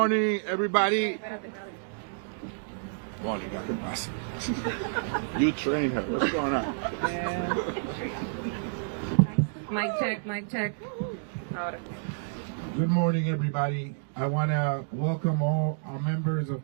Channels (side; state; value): left; silent; digital silence